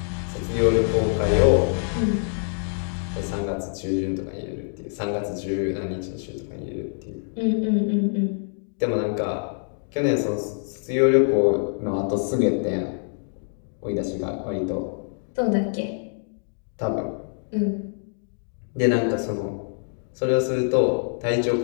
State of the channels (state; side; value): silent; right; digital silence